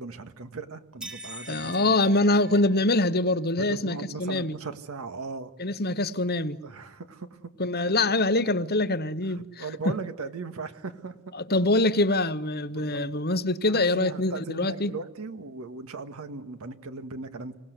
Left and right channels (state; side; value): normal; both; correlation 0.16